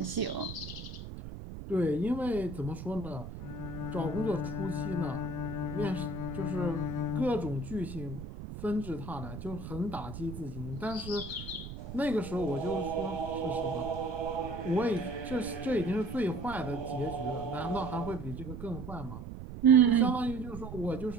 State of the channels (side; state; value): right; noise; rumble, 10 dB below the sound